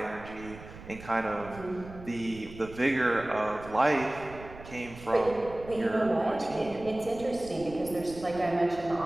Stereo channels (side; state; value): right; noise; rumble, 16 dB below the sound